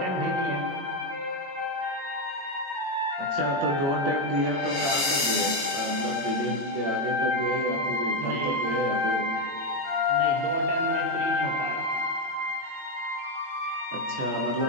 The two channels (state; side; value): late; left; 22 ms